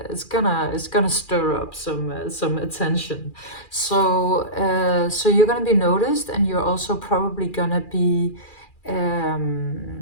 gonna stir up some attention. So you're gonna be noticed, and you're also probably gonna be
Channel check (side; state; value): right; late; 2.4 ms